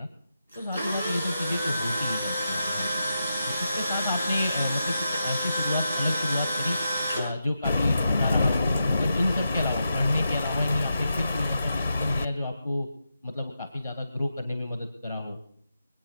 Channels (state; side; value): inverted; both; correlation -0.87